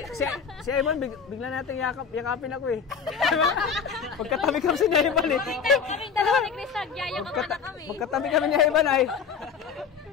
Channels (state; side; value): quieter; right; 6.4 dB